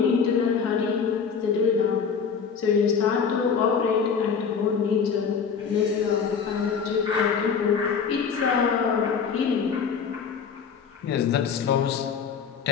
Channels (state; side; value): quieter; right; 6.3 dB